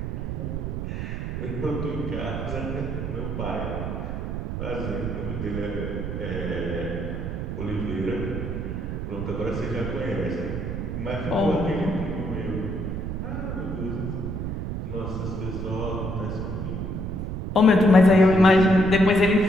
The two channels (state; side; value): noise; right; rumble, 3 dB below the sound